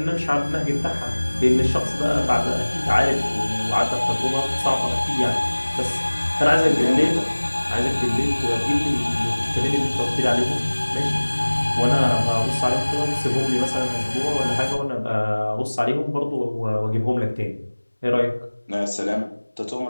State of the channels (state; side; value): inverted; both; correlation -1.00